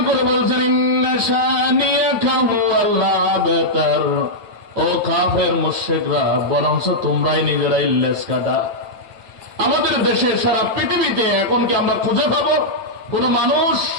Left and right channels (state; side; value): late; left; 8.9 ms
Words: করে বলছেন ইন্না শানিয়াকা হুয়াল আবতার, ও কাফের মুশরিকরা বরঞ্চ তোমরাই নিজেরাই লেজ কাটা। আমাদের দেশে সারা পৃথিবীতে এখন কি আমরা খুঁজে পাবো কোন মানুষ